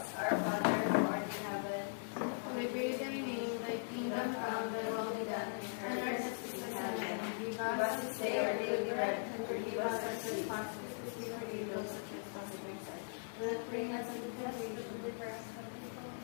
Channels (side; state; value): right; silent; digital silence